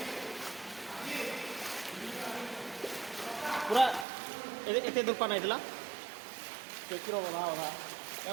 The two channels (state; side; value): drops out; left; at 4.0 s